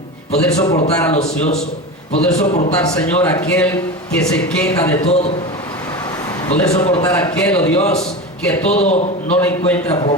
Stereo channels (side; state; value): both; normal; correlation 0.25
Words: poder soportar al ocioso, poder soportar, Señor, aquel que se queja de todo, poder soportar aquel, oh Dios, que todo no le encuentra